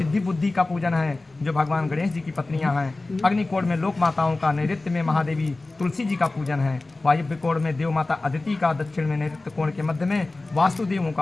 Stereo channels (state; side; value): quieter; right; 3.1 dB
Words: बुद्धि का पूजन है जो भगवान गणेश जी की पत्नियां हैं। अग्नि कोण में लोक माताओं का, नैऋत्य में महादेवी तुलसी जी का पूजन है। वायव्य कोण में देव माता अदिति का, दक्षिण में नैऋत्य कोण के मध्य में वास्तुदेवों का